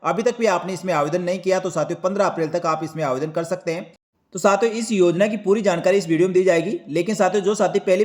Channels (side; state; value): both; identical; correlation 1.00